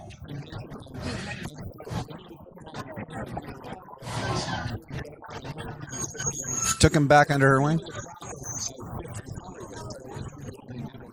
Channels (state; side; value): identical; both; correlation 1.00